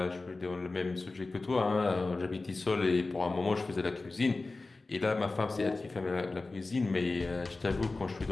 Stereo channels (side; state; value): right; quieter; 3.4 dB